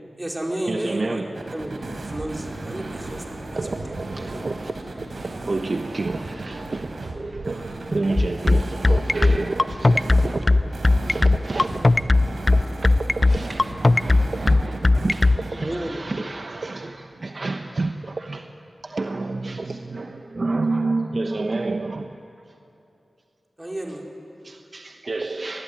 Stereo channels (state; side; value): normal; both; correlation 0.97